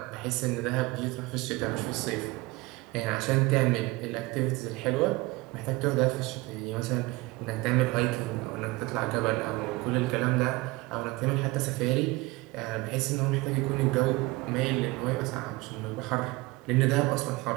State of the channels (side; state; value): left; quieter; 22.1 dB